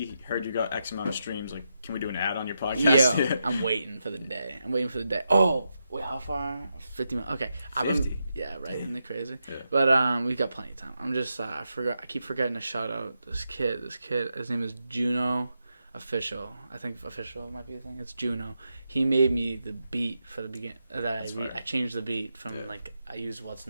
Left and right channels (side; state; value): both; inverted; correlation -0.85